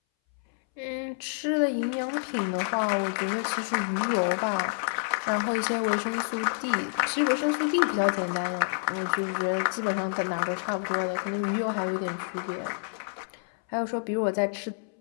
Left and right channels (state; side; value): silent; right; 59 dB below the other